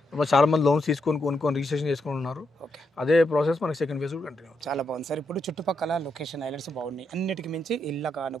చాలా మంది లోన్స్ కొనుక్కొని రిజిస్ట్రేషన్ చేసుకొని ఉన్నారు. అదే ప్రాసెస్ మనకి సెకండ్ ఫేజ్ కూడా కంటిన్యూ. చాలా బాగుంది సార్. ఇప్పుడు చుట్టుపక్కల లొకేషన్ హైలైట్స్ బాగున్నాయి. అన్నిటికి మించి ఇళ్ళ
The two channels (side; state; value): both; normal; correlation 0.81